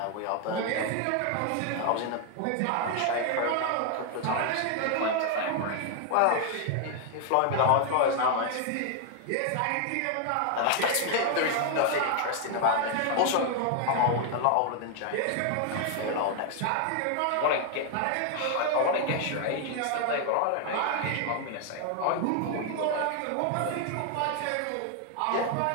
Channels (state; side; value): different; both; correlation 0.00